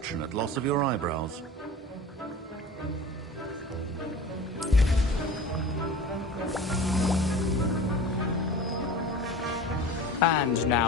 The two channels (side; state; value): both; normal; correlation 0.37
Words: loss of your eyebrows. And